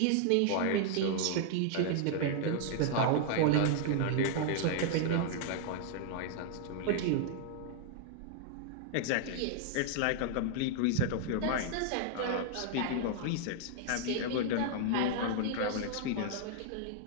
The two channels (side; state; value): both; different; correlation -0.01